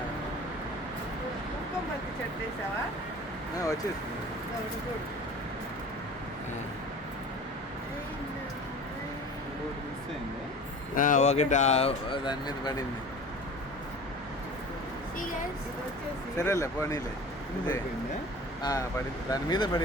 కుంకుమంతి చెట్టు వేసావా? వచ్చేసింది ఒకటి చూడు. ఒకటి దాని మీద పడింది See guys. ఇది వచ్చేసి సరేలే పోనీలే ఇదే పడింది దాని మీద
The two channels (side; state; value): both; normal; correlation 0.39